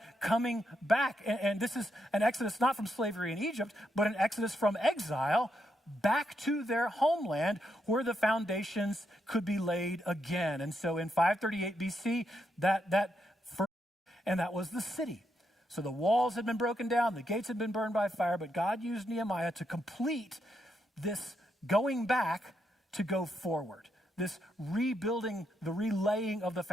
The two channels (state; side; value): normal; both; correlation 0.81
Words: coming back. And this is an Exodus not from slavery in Egypt, but an Exodus from exile back to their homeland, where the foundations could be laid again. And so in 538 BC, that was the city. So the walls had been broken down, the gates had been burned by fire, but God used Nehemiah to complete this going back to go forward, this rebuilding, the relaying of the